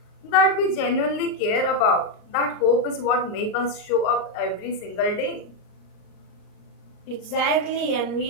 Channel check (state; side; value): late; right; 38 ms